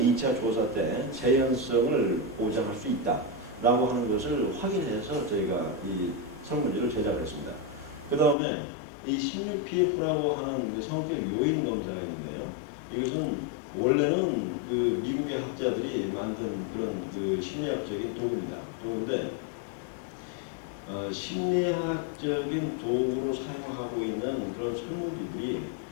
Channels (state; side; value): drops out; right; at 8.3 s